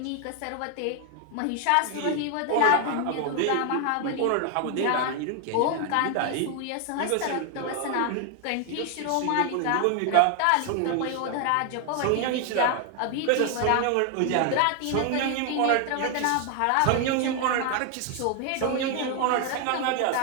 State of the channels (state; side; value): different; both; correlation 0.00